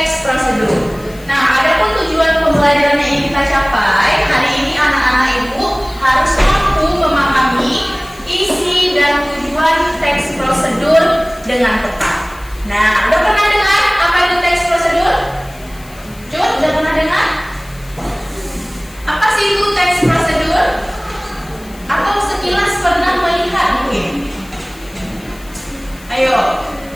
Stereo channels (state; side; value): noise; left; hiss, 23 dB below the sound